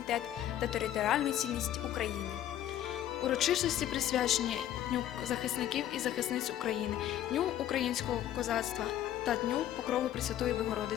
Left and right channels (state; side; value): quieter; right; 11.9 dB